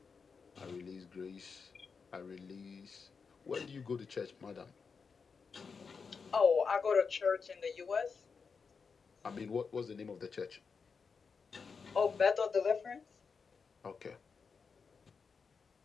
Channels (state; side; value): quieter; right; 5.4 dB